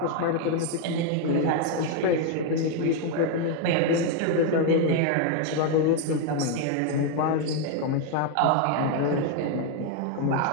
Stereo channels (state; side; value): different; both; correlation 0.01